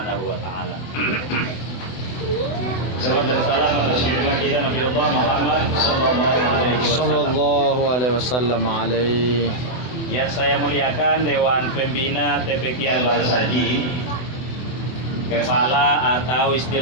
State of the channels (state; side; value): late; right; 24 ms